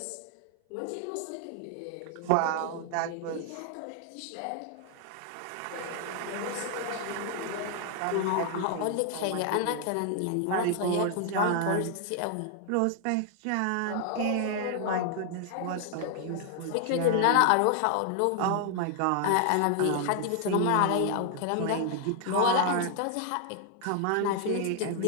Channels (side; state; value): both; different; correlation 0.00